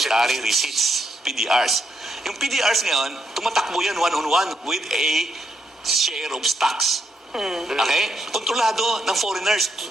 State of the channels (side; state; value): both; normal; correlation 0.78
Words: Receipts, PDRs. Yung PDRs ngayon, tumatakbo yan one-on-one with a share of stocks. Okay? Kontrolado ng foreigners